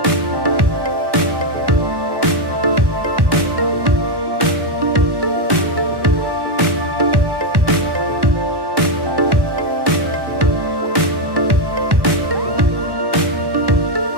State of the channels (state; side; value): late; left; 1.1 ms